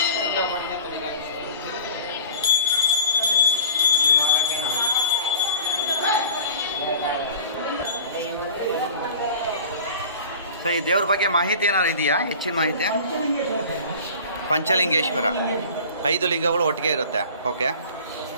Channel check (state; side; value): inverted; both; correlation -0.42